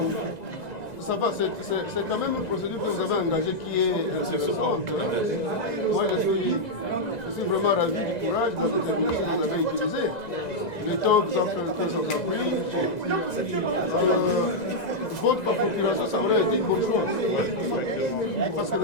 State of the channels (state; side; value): late; right; 2.0 ms